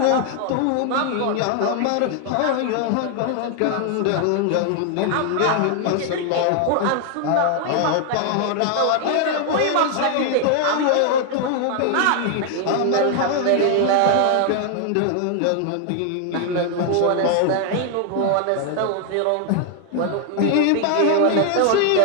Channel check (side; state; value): both; different; correlation 0.00